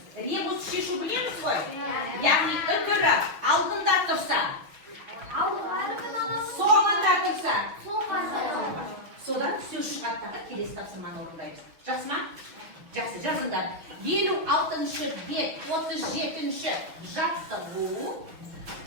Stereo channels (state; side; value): late; left; 6.2 ms